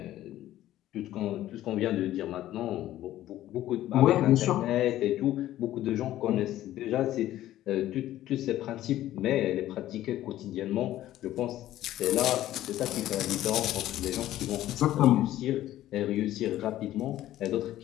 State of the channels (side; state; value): right; quieter; 13.8 dB